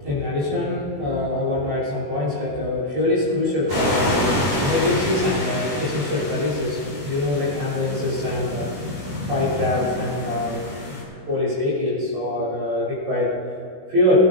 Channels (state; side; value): late; left; 21 ms